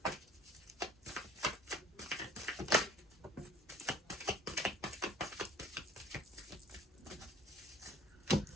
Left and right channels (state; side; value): normal; both; correlation 0.52